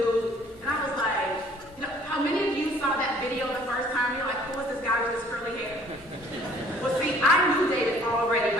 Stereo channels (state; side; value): normal; both; correlation 0.56